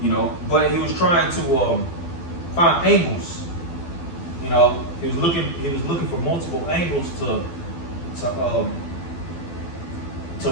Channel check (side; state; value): right; late; 12 ms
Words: you know, but he was trying to find angles. You know, he was looking for multiple angles to